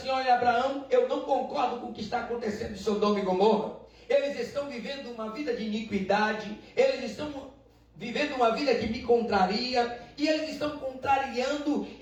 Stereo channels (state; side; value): identical; both; correlation 1.00